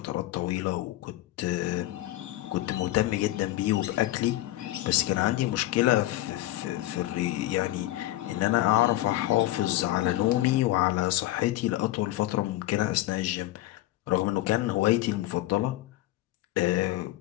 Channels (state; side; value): quieter; right; 16.0 dB